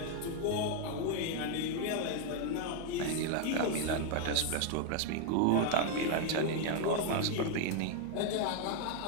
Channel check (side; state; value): both; different; correlation 0.00